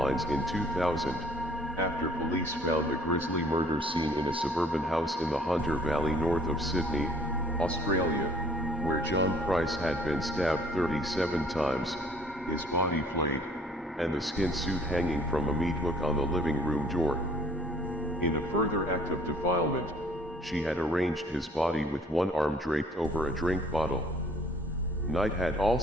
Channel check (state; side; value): normal; both; correlation 0.56